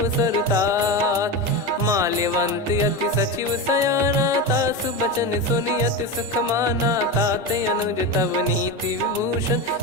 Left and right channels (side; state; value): both; normal; correlation 0.19